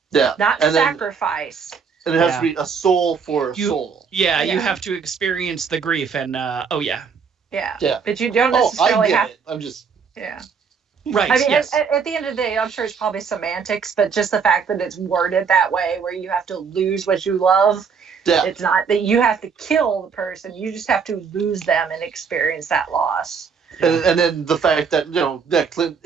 Yeah. not And then- sacrifice. And it has Yeah. to be a soul for a You- soul. Yeah, you Yeah. have to experience the grief and oh yeah. Yeah. Yeah. But you don't Oh, I necessarily get have. it. I'm just. Yeah. Right. I mean, yes. at the end of the day, I'm sure it's probably semantics, but just the fact that it's worded that way, where you have to lose what you love, Yeah. it's not that you have to kill the person. You just have to lose them and experience that loss. And then the fact that, that Clint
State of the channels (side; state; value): left; quieter; 6.0 dB